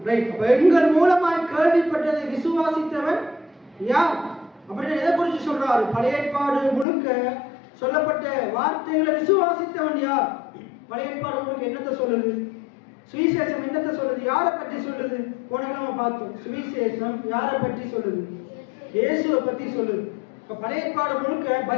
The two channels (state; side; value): drops out; right; at 6.9 s